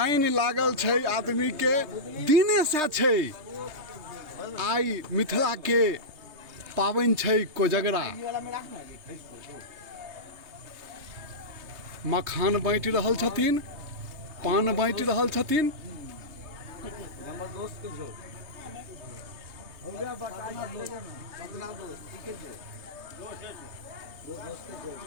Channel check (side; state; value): left; late; 3.3 ms